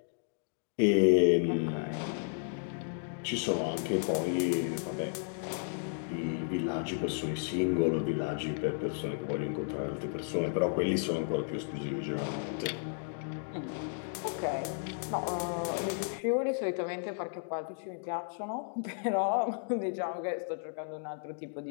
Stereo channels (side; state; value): right; silent; digital silence